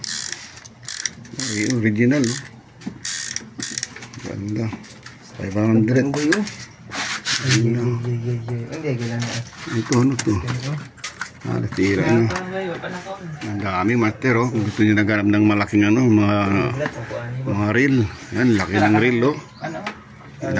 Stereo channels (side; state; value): both; identical; correlation 1.00